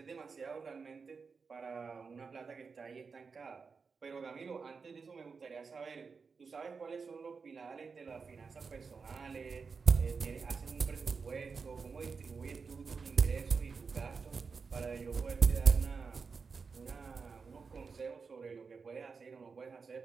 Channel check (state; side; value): quieter; left; 5.1 dB